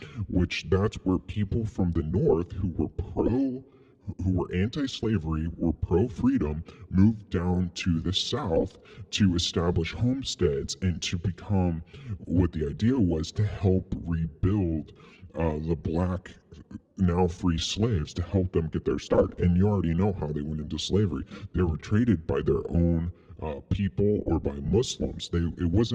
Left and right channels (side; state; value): both; identical; correlation 1.00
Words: which that's where people from the North who were anti-slavery, were pro-freedom, moved down to the South to establish homesteads and to become, what the idea was, to help rebuild the black, now free slaves, to help them get their start. And you already know how they went into slavery. They were traded by their own people or by Muslims. It